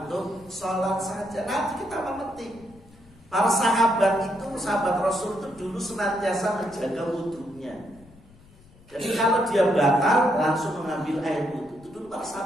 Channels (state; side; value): noise; left; rumble, 26 dB below the sound